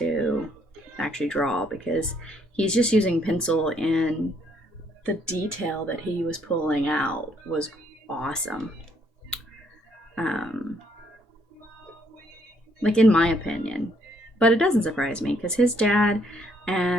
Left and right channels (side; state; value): both; normal; correlation 0.69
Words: actually draw, because he's just using pencil, and the detail that he was pulling out was awesome. Like, in my opinion. But it doesn't surprise me, because his dad